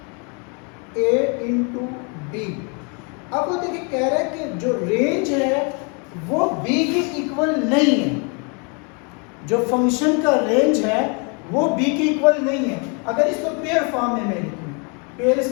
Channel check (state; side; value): quieter; right; 35.0 dB